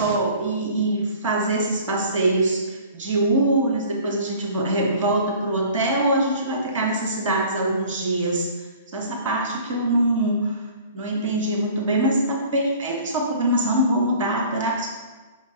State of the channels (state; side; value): inverted; both; correlation -0.47